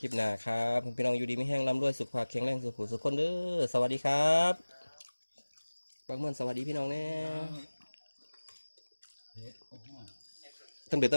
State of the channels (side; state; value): both; inverted; correlation -1.00